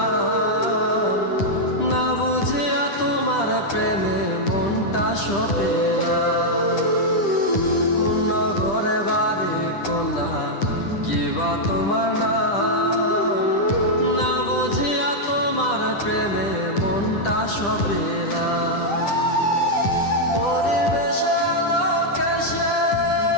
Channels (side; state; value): right; late; 10 ms